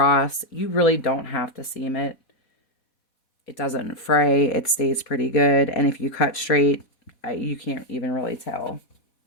you really don't have to seam it. It doesn't fray. It stays pretty good. And if you cut straight, you can't even really tell.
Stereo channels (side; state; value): right; late; 4.1 ms